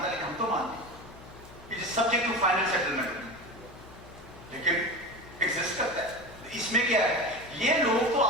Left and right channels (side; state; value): left; noise; hum, 19 dB below the sound